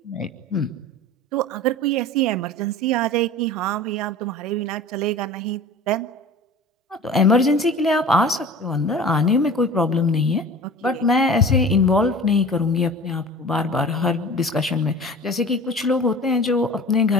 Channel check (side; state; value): both; normal; correlation 0.40